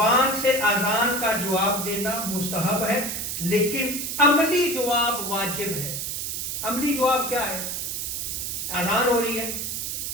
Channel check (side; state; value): right; noise; hiss, 3 dB below the sound